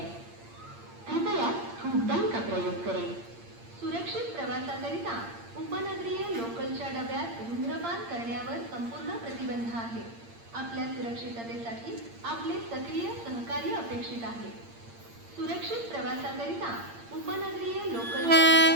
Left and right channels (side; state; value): left; late; 8.7 ms